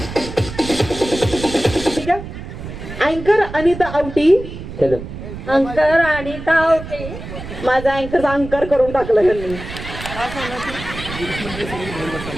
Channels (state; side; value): noise; right; rumble, 10 dB below the sound